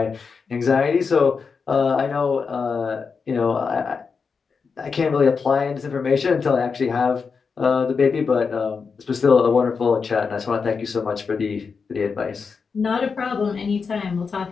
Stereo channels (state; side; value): quieter; right; 5.3 dB